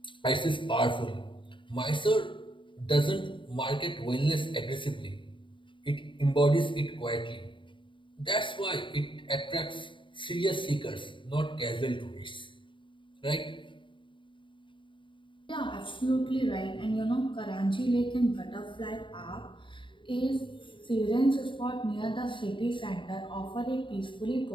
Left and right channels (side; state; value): right; late; 0.24 ms